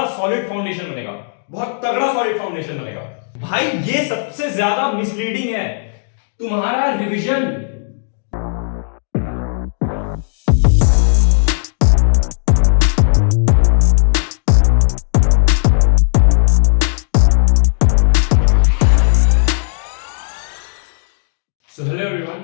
सॉलिड फाउंडेशन बनेगा, बहुत तगड़ा सॉलिड फाउंडेशन बनेगा। भाई ये सबसे ज्यादा मिसलीडिंग है, तुम्हारा revision. So hello everyone,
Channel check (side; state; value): right; silent; digital silence